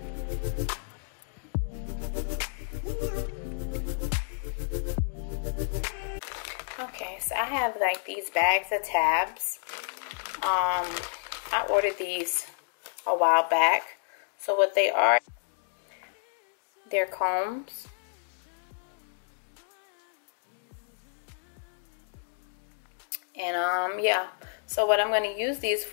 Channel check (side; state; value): right; silent; digital silence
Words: Okay, so I have like these bags of tabs. I ordered these a while back. So what they are, they're combs. And yeah, so what I'm going to use these